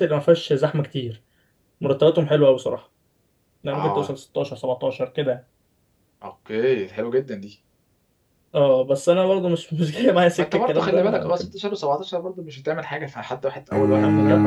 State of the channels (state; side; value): identical; both; correlation 1.00